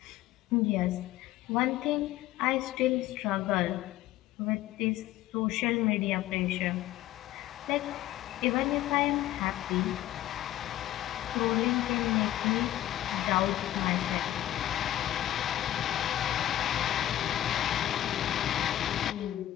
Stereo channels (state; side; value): quieter; right; 13.7 dB